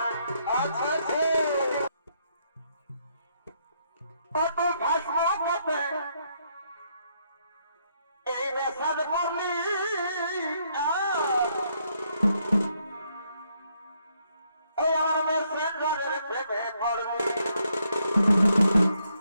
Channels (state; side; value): inverted; both; correlation -0.74